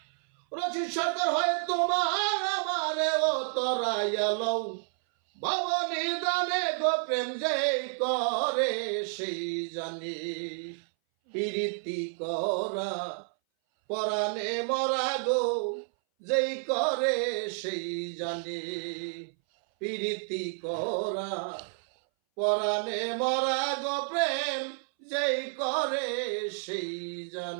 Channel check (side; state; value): left; silent; 58 dB below the other